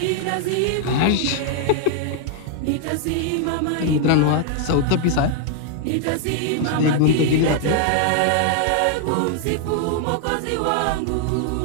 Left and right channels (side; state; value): both; different; correlation 0.00